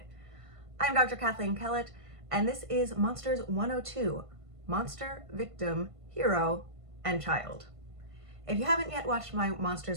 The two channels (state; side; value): late; left; 1.5 ms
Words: I'm Dr. Kathleen Kellett, and this is Monsters 102, Monster, Victim, Hero, and Child. If you haven't yet watched my